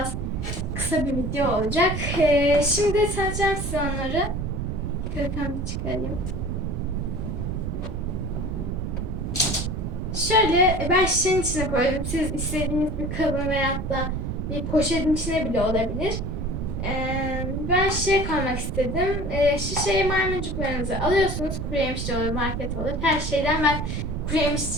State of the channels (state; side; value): noise; right; rumble, 3 dB below the sound